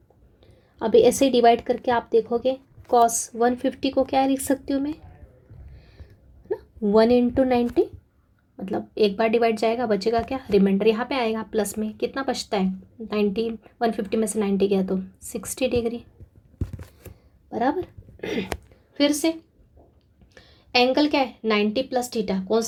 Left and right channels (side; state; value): both; identical; correlation 1.00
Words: अभी ऐसे ही डिवाइड करके आप देखोगे, कॉस 150 को क्या लिख सकती हूँ मैं ना? 1/90, मतलब एक बार डिवाइड जाएगा, बचेगा क्या? रिमाइंडर यहाँ पे आएगा प्लस में। कितना बचता है? 90, 150 में से 90 गया तो 60 डिग्री, बराबर। फिर से एंगल क्या है? 90 + थीटा। कौन